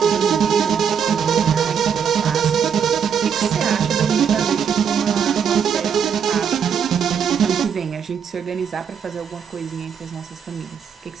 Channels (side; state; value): left; quieter; 7.4 dB